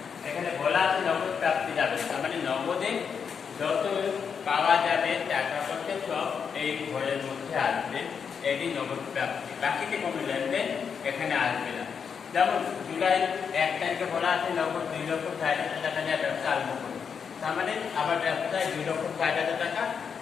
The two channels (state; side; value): quieter; right; 6.6 dB